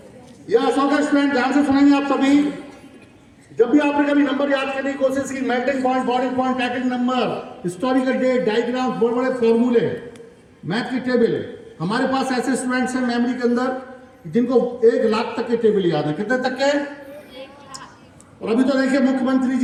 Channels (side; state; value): both; identical; correlation 1.00